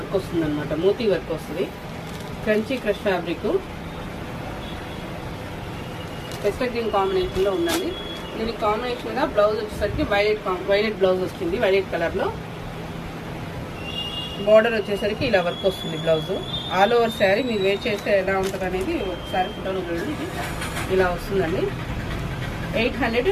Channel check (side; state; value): both; identical; correlation 1.00